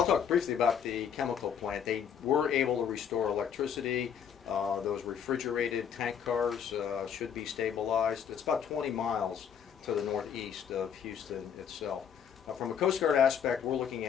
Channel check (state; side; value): quieter; right; 8.1 dB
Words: talk briefly about the chemical plant. They were able to restore electricity. Those refrigerated tank cars should be stabilized. It's about 20 miles to the northeast of Houston itself. From a Coast Guard aspect, we're looking